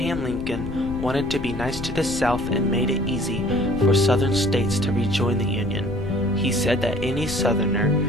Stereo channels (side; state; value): left; noise; rumble, 9 dB below the sound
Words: Lincoln wanted to be nice to the South and made it easy for Southern states to rejoin the Union. He said that any Southerner